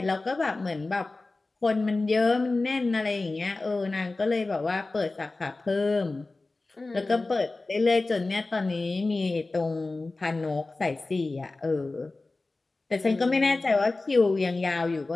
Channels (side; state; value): right; quieter; 3.3 dB